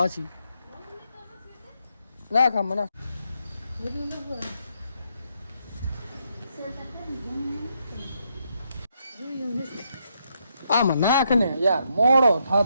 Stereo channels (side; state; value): both; inverted; correlation -0.77